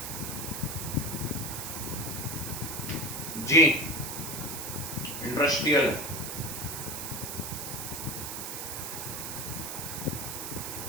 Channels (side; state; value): right; noise; hiss, 5 dB below the sound